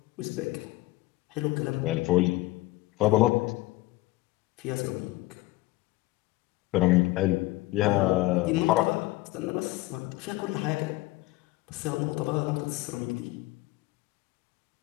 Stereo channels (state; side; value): quieter; right; 19.6 dB